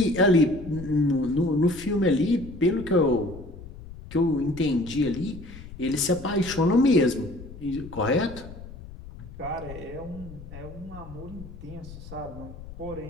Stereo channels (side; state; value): left; noise; rumble, 14 dB below the sound